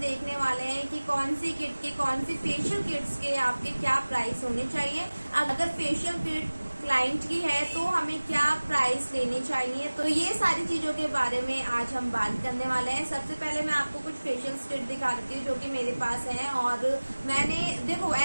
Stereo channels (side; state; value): both; inverted; correlation -1.00